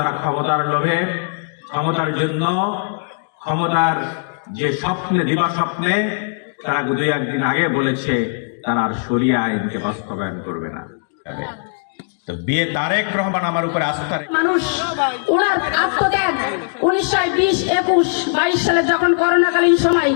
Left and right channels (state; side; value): silent; right; digital silence